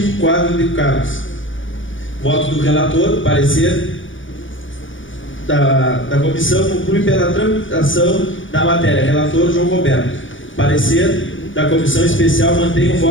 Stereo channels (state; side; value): late; right; 0.56 ms